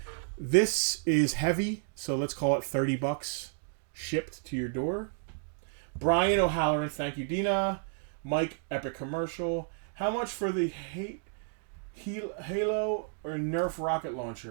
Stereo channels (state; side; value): silent; left; digital silence